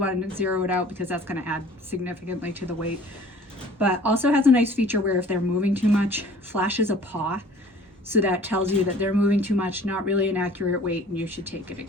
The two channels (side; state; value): both; normal; correlation 0.49